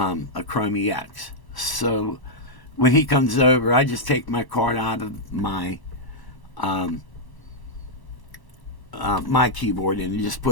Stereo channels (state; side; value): late; right; 1.1 ms